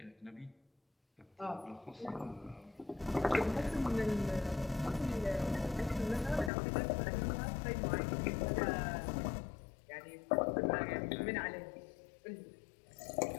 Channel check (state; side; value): drops out; right; at 6.5 s